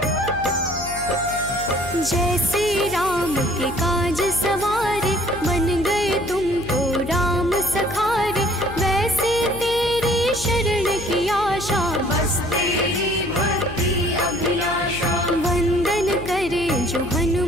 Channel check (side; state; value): left; noise; hum, 12 dB below the sound